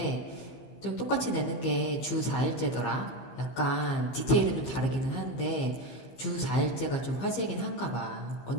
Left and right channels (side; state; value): right; late; 15 ms